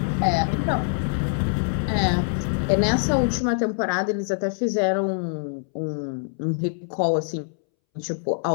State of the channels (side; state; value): right; silent; 62 dB below the other